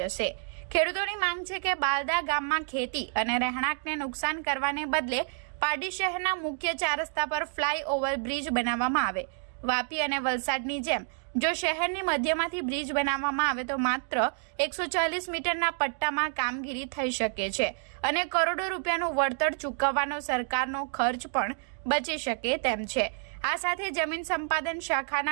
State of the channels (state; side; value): silent; left; 58 dB below the other